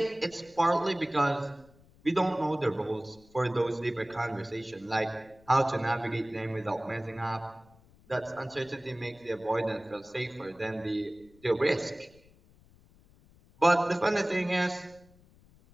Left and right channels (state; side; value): noise; left; rumble, 27 dB below the sound